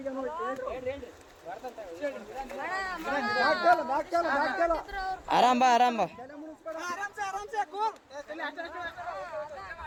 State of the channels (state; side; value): identical; both; correlation 1.00